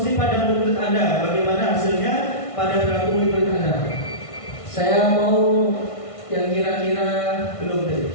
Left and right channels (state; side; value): late; right; 1.5 ms